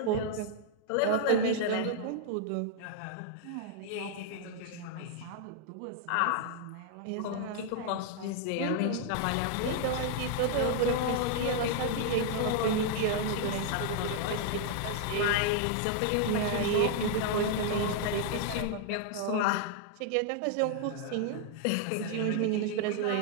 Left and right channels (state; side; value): different; both; correlation 0.00